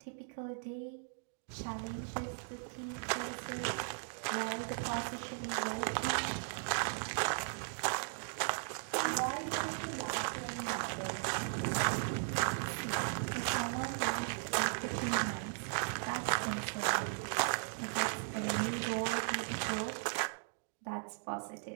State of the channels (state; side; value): silent; left; digital silence